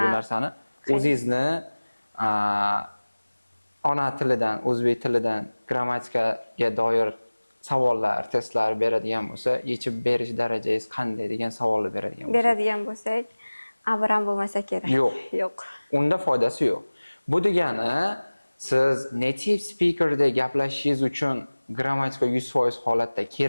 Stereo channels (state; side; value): inverted; both; correlation -1.00